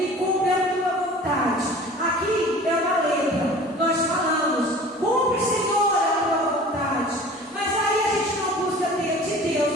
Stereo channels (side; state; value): both; normal; correlation 0.43